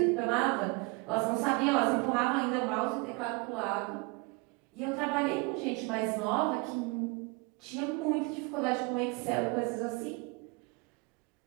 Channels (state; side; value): quieter; left; 28.8 dB